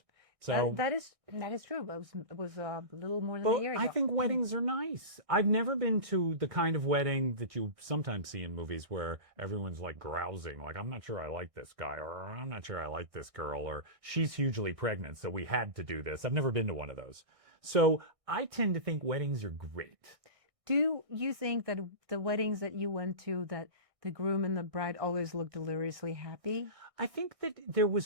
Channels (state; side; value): late; left; 1.6 ms